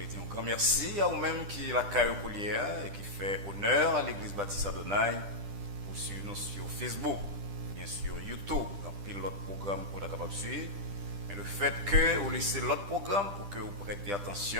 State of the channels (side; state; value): left; late; 10 ms